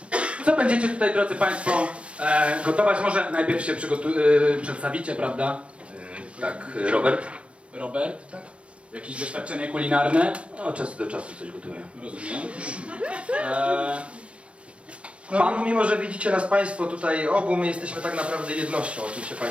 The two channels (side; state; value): left; late; 0.061 ms